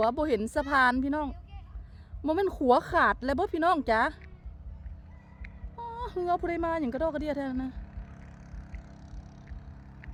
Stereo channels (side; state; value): both; identical; correlation 1.00